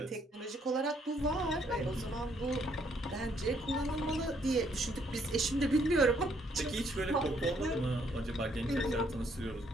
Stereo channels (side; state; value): both; normal; correlation 0.69